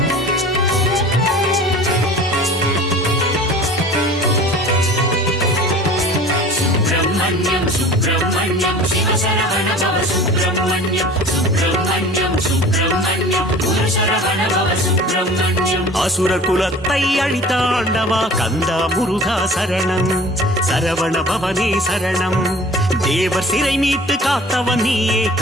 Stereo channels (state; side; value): normal; both; correlation 0.43